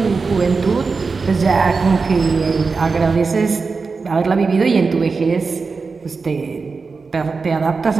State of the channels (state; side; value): quieter; left; 4.5 dB